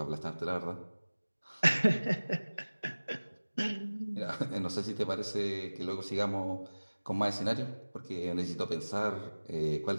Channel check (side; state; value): both; inverted; correlation -1.00